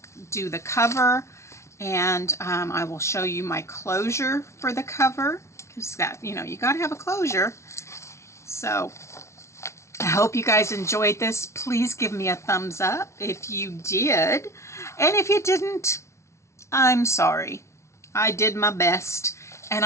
do the cover, and I will show you my closure for the cover, because that, you know, you got to have a closure. So I hope you guys enjoyed this. Please give me a thumbs up if you did, and if you didn't, I'm sorry. I did my best, and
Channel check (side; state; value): right; late; 0.13 ms